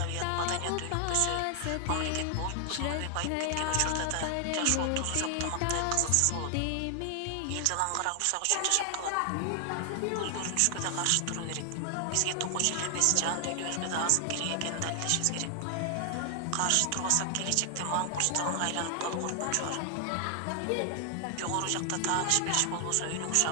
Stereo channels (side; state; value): both; different; correlation 0.00